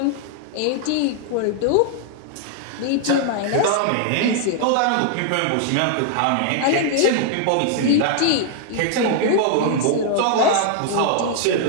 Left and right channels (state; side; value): different; both; correlation 0.00